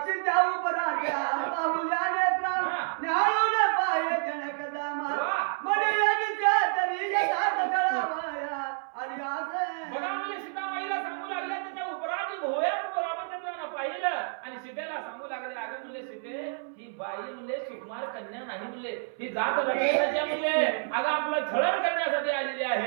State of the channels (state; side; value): silent; left; 58 dB below the other